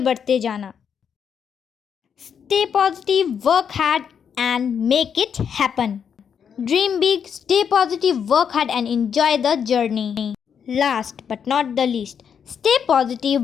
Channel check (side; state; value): right; quieter; 7.5 dB